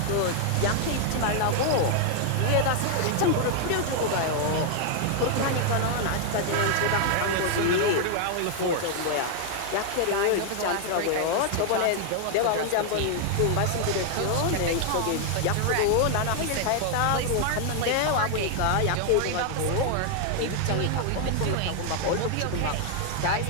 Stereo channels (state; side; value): different; both; correlation 0.00